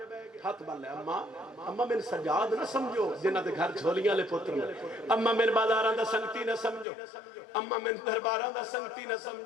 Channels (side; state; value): right; drops out; at 6.9 s